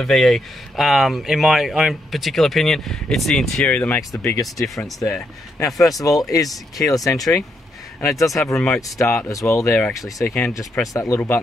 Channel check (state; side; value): normal; both; correlation 0.78